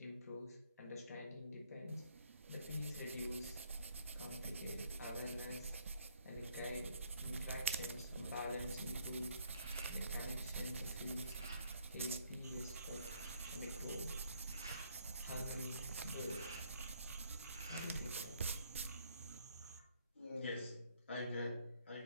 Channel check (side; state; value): both; inverted; correlation -0.66